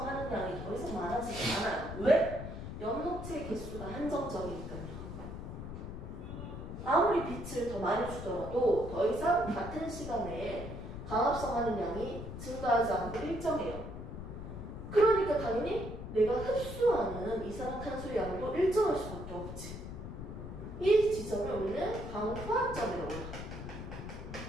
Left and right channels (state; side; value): noise; left; rumble, 8 dB below the sound